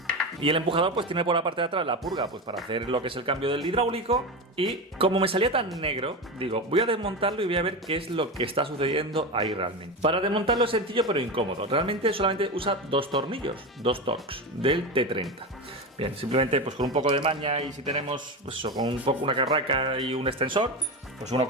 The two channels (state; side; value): normal; both; correlation 0.20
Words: Y el empujador pues tiene por la parte de atrás la purga pues para hacer lo que es el cambio del hidráulico. Y como me salía tan negro, digo, voy a desmontarlo y voy a ver qué es lo que está sucediendo ahí realmente. Para desmontarlo es sencillo pero incómodo. Realmente solamente usa dos tornillos, dos Torx del T30. Bien, simplemente pues con un poco de maña y si tenemos pues eso, con un poco una carraca y un extensor, pues uno